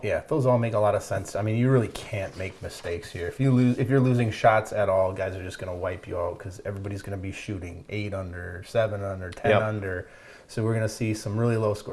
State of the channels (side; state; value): both; identical; correlation 1.00